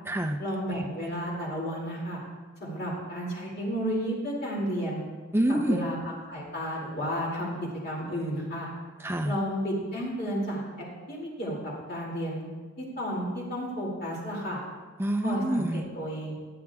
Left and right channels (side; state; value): both; normal; correlation 0.60